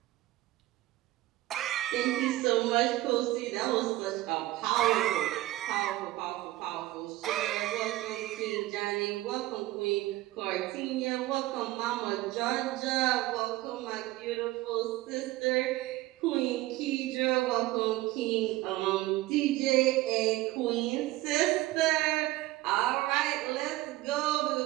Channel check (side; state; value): left; quieter; 17.3 dB